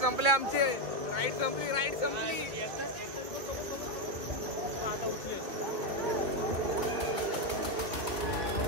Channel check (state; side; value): late; left; 2.1 ms